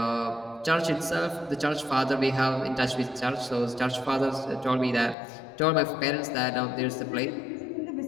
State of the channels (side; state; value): right; drops out; at 5.2 s